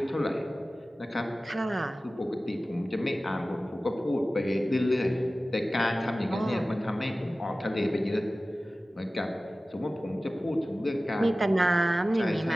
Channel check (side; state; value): both; normal; correlation 0.96